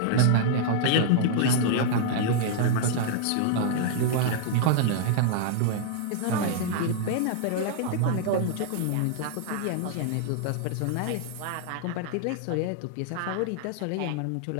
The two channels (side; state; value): both; different; correlation -0.01